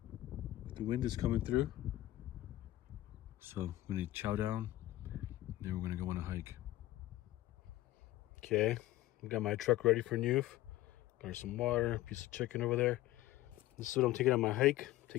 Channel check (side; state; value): right; quieter; 15.9 dB